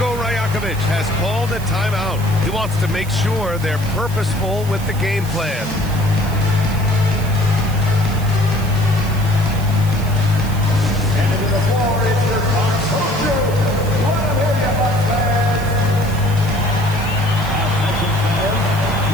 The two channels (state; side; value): noise; right; hiss, 16 dB below the sound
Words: Rajakovic has called a timeout. He wants to make sure they're purposeful with the game plan.